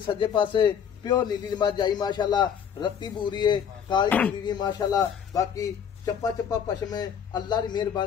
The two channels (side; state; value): right; quieter; 7.9 dB